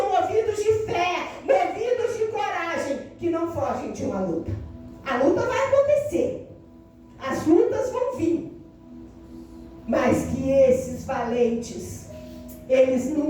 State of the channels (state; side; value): identical; both; correlation 1.00